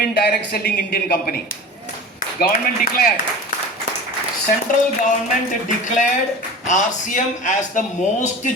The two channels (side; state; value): both; normal; correlation 0.35